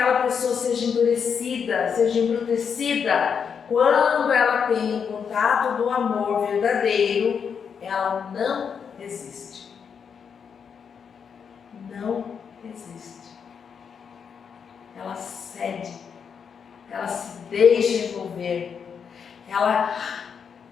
pessoa seja endurecida, seja embrutecida, quando ela tem o contato do amor verdadeiro, ela não resiste. Não resiste. Ela cede, ela se deixa envolver, ela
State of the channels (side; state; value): right; quieter; 6.8 dB